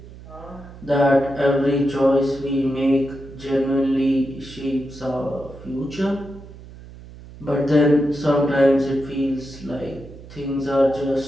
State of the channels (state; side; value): noise; right; hum, 17 dB below the sound